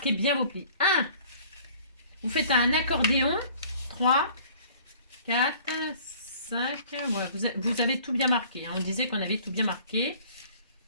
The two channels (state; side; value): inverted; both; correlation -0.51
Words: bien vos plis. 1, vous faites un accordéon. 3, 4, 5, ouais, vous avez tout bien marqué. Hein. On disait qu'on avait tout bien marqué.